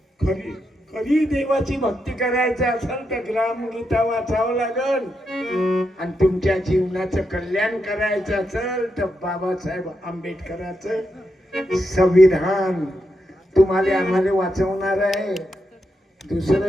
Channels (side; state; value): both; normal; correlation 0.84